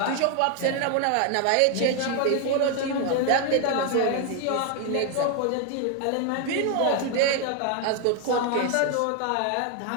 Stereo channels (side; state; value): both; different; correlation 0.01